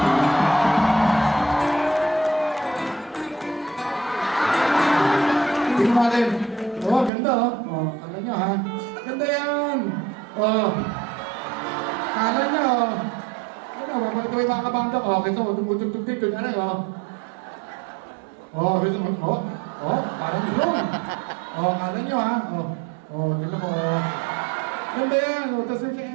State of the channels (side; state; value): left; drops out; at 7.1 s